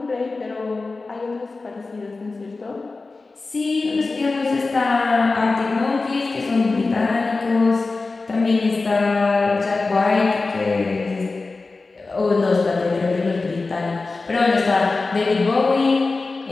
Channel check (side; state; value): right; quieter; 3.7 dB